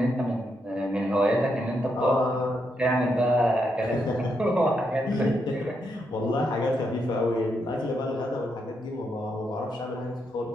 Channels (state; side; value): normal; both; correlation 0.80